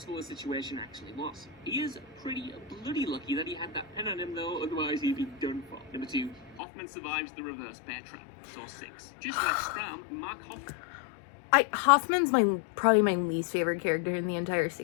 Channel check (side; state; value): right; drops out; at 6.6 s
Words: the situation actually was. He is pretty bloody lucky that he had that pen on him though, otherwise he'd be done for. Number 2, Hoffman survives the reverse bear trap. Saw 6. Just like Stram, Mark Hoffman's probably my least favorite character in the entire